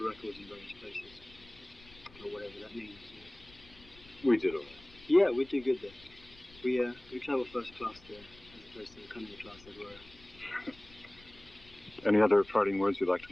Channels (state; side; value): noise; left; rumble, 23 dB below the sound